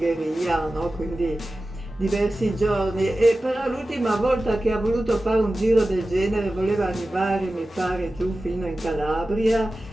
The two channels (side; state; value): both; normal; correlation 0.95